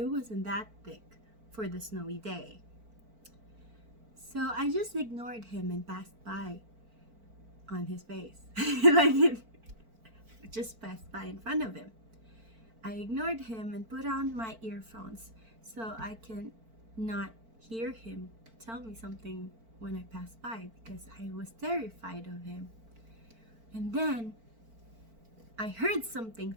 wasn't that thick for the snowy day. So I just ignored him and passed by. on his face. Like it just passed by in front of him. I ignored him and put on my earphones so I can not hear him tell me something when I passed by because I was terrified of him. And then I heard something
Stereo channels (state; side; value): late; left; 4.5 ms